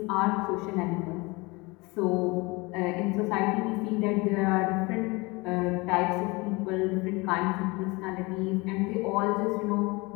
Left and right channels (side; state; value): right; quieter; 25.2 dB